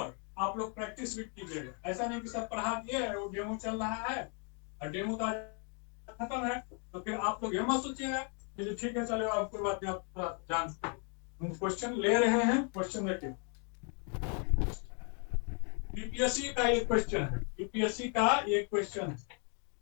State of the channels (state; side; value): quieter; right; 39.6 dB